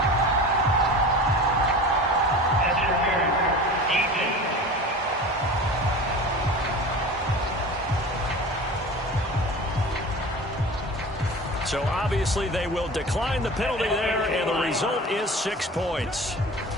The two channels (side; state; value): both; normal; correlation 0.36